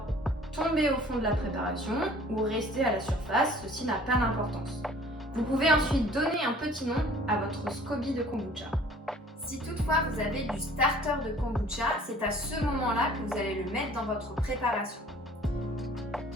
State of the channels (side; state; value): both; normal; correlation 0.52